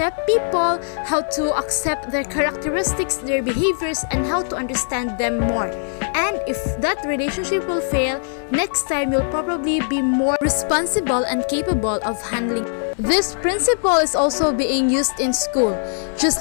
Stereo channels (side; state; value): right; silent; digital silence